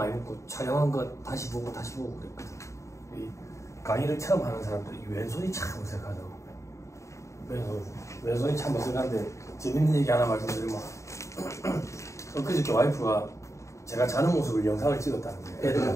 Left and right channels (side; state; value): right; late; 0.14 ms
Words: 먹고 촬영한 거 다시 보고 그랬거든. 이 강의를 처음 하는 사람들이 왼손이 참 어색하다고. 왼손이 참 어색한데 재밌는 얘기 하나 말씀드리면 그저께 와이프가 제가 자는 모습을 영상을 찍었다는 거예요.